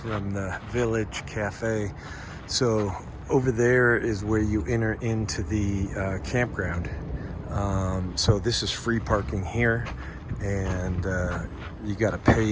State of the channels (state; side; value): identical; both; correlation 1.00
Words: the village cafe. So over there is where you enter into the campground. So this is free parking here, and you got to